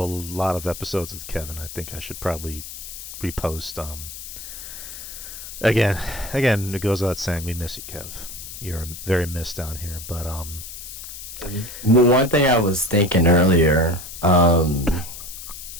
lot of episodes with Kevin. I think I should probably repost. Again, it goes without saying we miss you, Kev. You're very missed down here. But Well, one thing I was thinking earlier, I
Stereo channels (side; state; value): left; noise; hiss, 11 dB below the sound